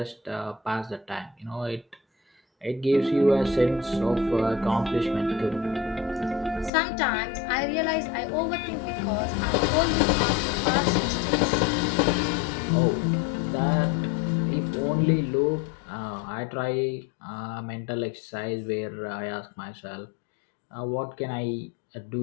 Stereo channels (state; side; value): drops out; right; at 6.7 s